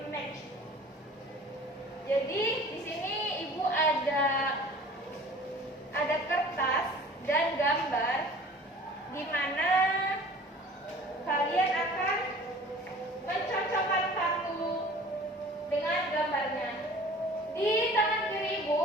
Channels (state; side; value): normal; both; correlation 0.46